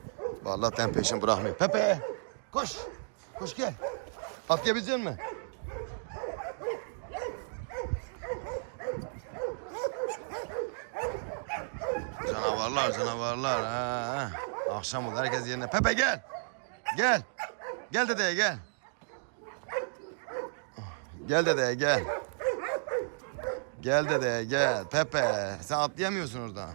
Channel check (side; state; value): left; silent; digital silence